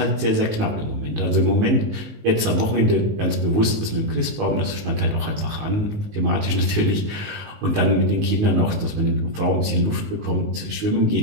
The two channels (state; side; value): late; left; 19 ms